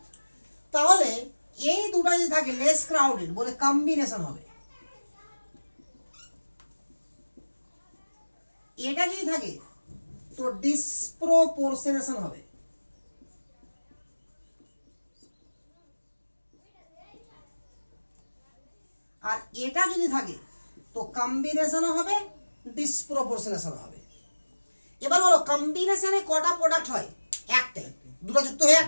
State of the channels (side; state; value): both; inverted; correlation -1.00